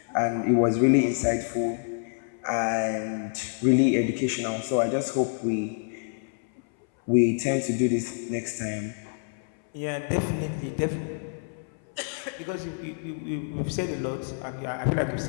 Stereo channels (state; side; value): silent; right; 60 dB below the other